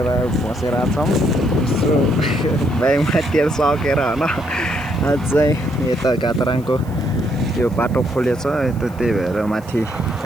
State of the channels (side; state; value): right; noise; hiss, 26 dB below the sound